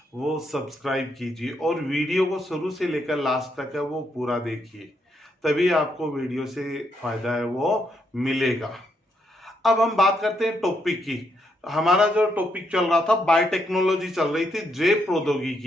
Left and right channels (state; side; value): normal; both; correlation 0.77